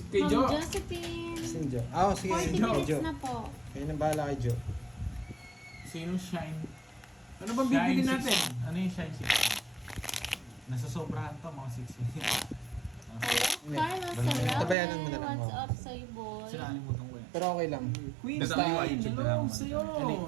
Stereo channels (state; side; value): drops out; left; at 14.8 s